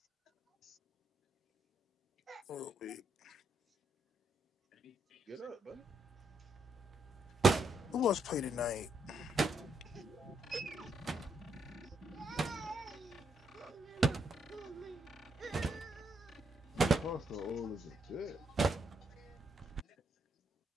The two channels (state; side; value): normal; both; correlation 0.76